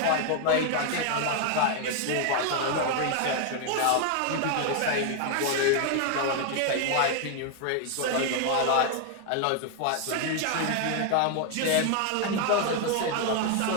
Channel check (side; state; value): both; different; correlation 0.00